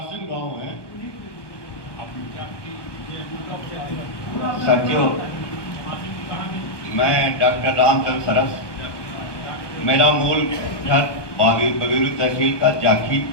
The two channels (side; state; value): right; late; 1.2 ms